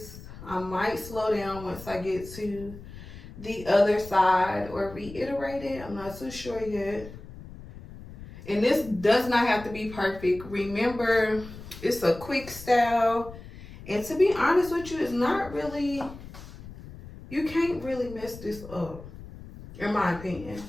I might slow down once I get to the other side or reiterate it. I'm not so sure yet. And this does not have to be perfect. Remember, it's a quick style. And to be honest with you, it's not really, you can't really mess this up, in my opinion.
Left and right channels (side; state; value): left; noise; rumble, 15 dB below the sound